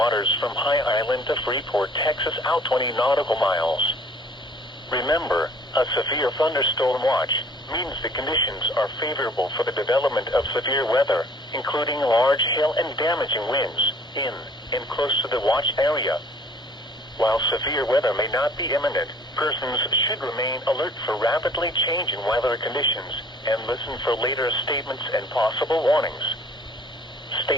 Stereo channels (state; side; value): normal; both; correlation 0.54